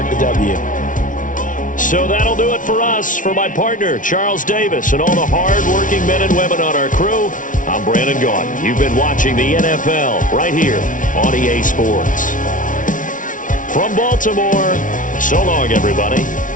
the W. So that'll do it for us. For my partner, Charles Davis, and all the hard-working men and women on our crew, I'm Brandon Gaudin. You've been watching the NFL right here on EA Sports. From Baltimore, so long, everybody.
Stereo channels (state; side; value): late; right; 0.38 ms